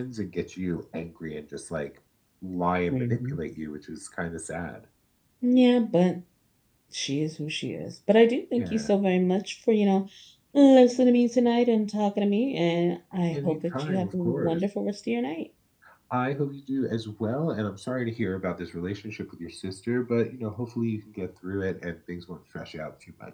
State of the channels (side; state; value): both; identical; correlation 1.00